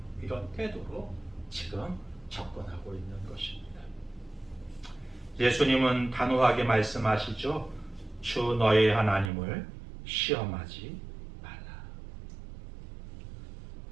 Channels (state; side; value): drops out; left; at 9.3 s